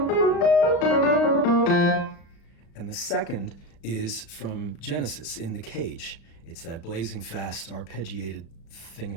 And the second is from Genesis, In the Cage. It's that blazing fast arpeggiated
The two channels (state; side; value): late; right; 35 ms